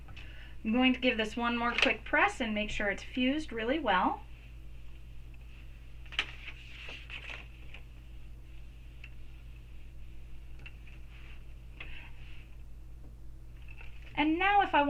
I'm going to give this one more quick press and make sure it's fused really well. And now if I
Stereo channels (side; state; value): both; identical; correlation 1.00